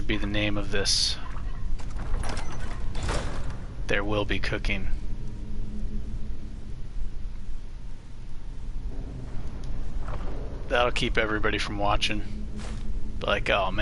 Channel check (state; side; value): identical; both; correlation 1.00